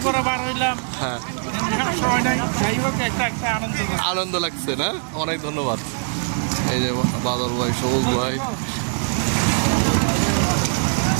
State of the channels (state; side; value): silent; left; digital silence